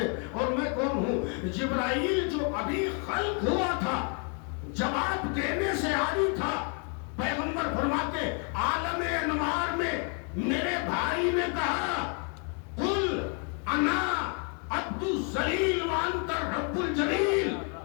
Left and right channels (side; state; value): right; quieter; 39.0 dB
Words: اور میں کون ہوں۔ جبرائیل جو ابھی خلق ہوا تھا جواب دینے سے عاری تھا، پیغمبر فرماتے عالم انوار میں میرے بھائی نے کہا قل انا عبد الذلیل وانت رب الجلیل،